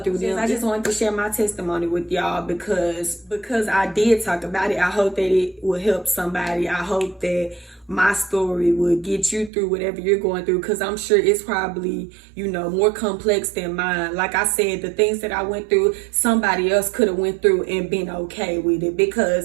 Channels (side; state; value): left; drops out; at 9.5 s